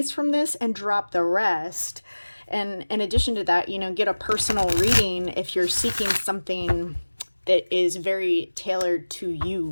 from this and drop the rest. And in addition to that, get a personal reading if you're seeking something that is very tailored to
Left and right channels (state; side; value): inverted; both; correlation -1.00